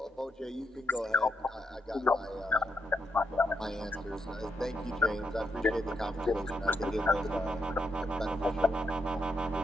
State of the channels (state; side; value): normal; both; correlation 0.80